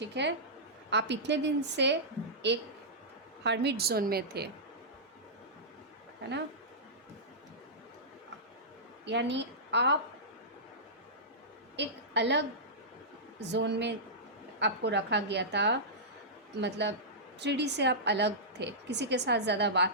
है। आप इतने दिन से एक हर्मिट जोन में थे, है ना, यानी आप एक अलग जोन में आपको रखा गया था। मतलब 3D से आप अलग थे, किसी के साथ ज़्यादा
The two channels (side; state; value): both; normal; correlation -0.15